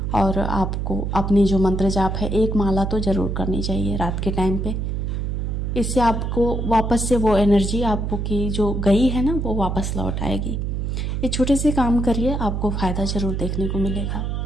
और आपको अपनी जो मंत्र जाप है, एक माला तो ज़रूर करनी चाहिए रात के टाइम पे। इससे आपको वापस से वो एनर्जी आपको की जो गई है ना, वो वापस लौट आएगी। ये छोटे से काम करिए, आपको फ़ायदा ज़रूर देखने को मिलेगा।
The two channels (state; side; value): noise; right; hum, 1 dB below the sound